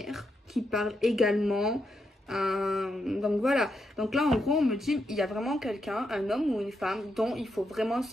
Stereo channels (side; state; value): both; normal; correlation 0.82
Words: qui parle également. Donc voilà. Donc là, en gros, on me dit, il y a vraiment quelqu'un, un homme ou une femme, dont il faut vraiment